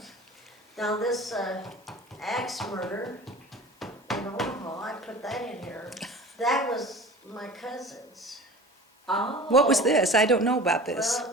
Now this axe murder in Omaha, I put that in here. That was my cousin's. Oh. What was this? I don't know about this.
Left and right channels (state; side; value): normal; both; correlation 0.39